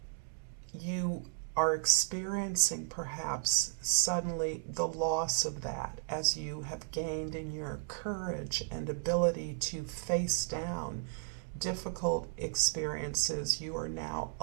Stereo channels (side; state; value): left; silent; digital silence